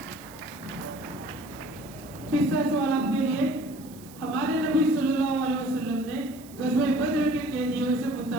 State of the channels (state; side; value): noise; right; hiss, 21 dB below the sound